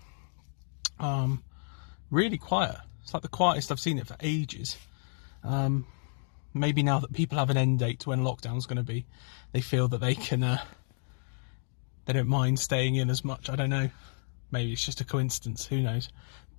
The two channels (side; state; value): right; silent; digital silence